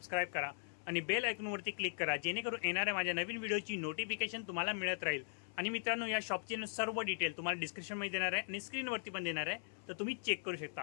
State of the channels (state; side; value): silent; right; 52 dB below the other